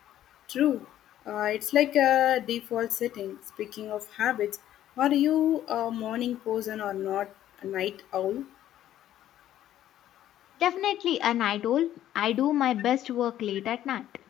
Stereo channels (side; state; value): right; quieter; 12.2 dB